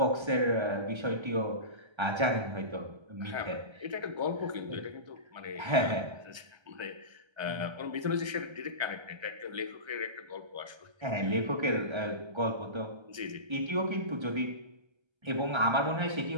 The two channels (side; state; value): left; late; 1.3 ms